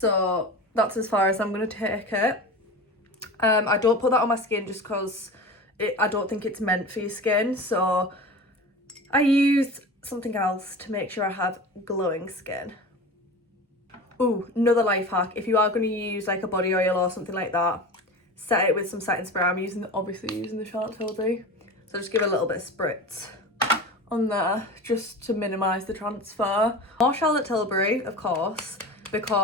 that's as far as I'm gonna take it. I don't put that on my skin just because I don't think it's meant for your skin, so I use something else to make sure I have glowing skin. Ooh, another life hack, if you are going to use like a body oil or something like that, set it with some setting spray. I'm obviously using the Charlotte Tilbury, so just give it a little bit of spritz on there just to minimise the transfer. More Charlotte Tilbury, of course,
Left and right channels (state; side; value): normal; both; correlation 0.32